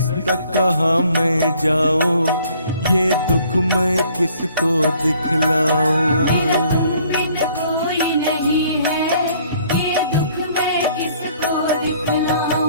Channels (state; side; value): inverted; both; correlation -0.60